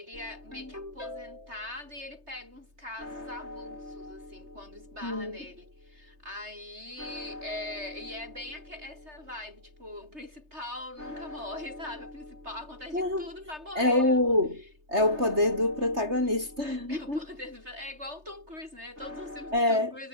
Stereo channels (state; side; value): late; left; 3.3 ms